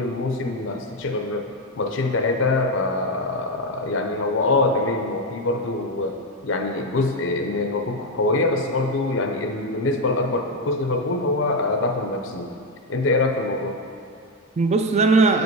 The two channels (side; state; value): both; normal; correlation 0.08